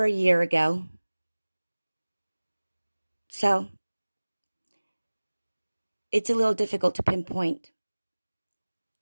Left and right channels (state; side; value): inverted; both; correlation -1.00